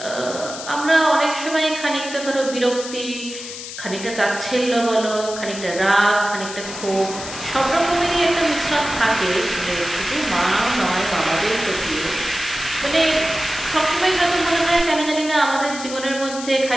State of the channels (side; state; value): left; noise; hiss, 10 dB below the sound